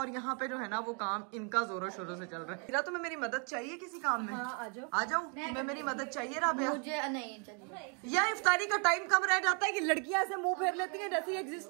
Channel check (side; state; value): left; quieter; 38.0 dB